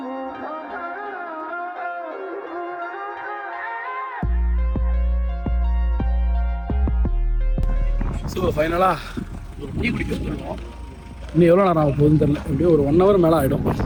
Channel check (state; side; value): identical; both; correlation 1.00